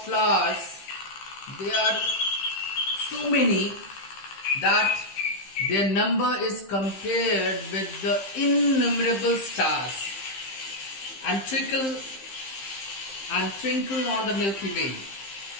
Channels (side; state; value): right; late; 15 ms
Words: flowers, they are so many that their number is compared with the innumerable stars and twinkle on the Milky Way.